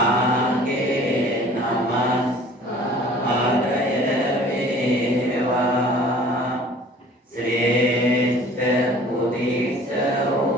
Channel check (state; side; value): normal; both; correlation 0.49